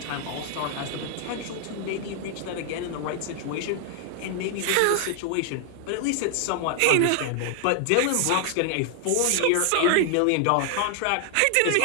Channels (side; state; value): both; different; correlation 0.00